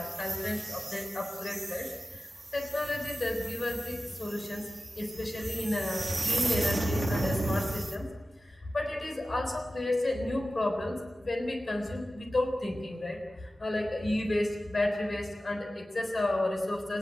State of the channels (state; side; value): normal; both; correlation 0.95